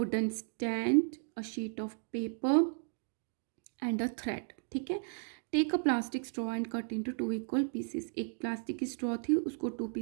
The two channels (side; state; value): left; silent; 55 dB below the other